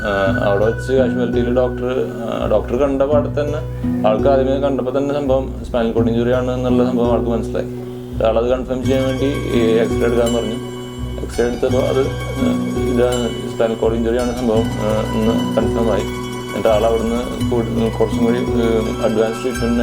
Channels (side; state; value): both; identical; correlation 1.00